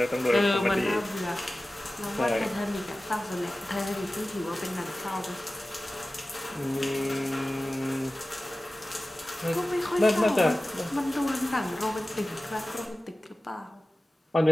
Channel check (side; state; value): both; normal; correlation 0.96